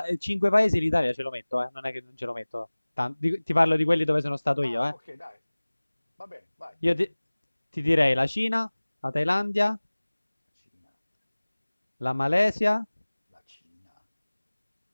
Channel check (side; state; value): both; inverted; correlation -1.00